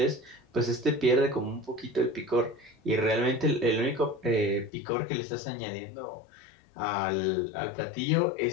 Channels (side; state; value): right; drops out; at 4.7 s